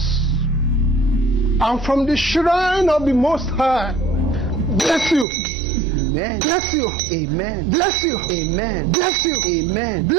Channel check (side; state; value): left; drops out; at 5.2 s